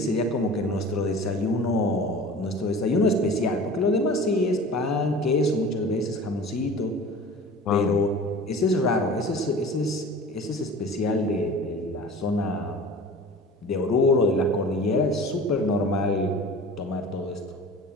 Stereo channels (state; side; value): normal; both; correlation 0.40